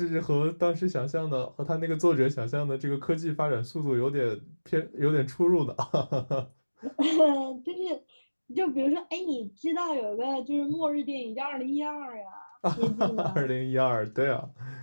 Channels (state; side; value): inverted; both; correlation -1.00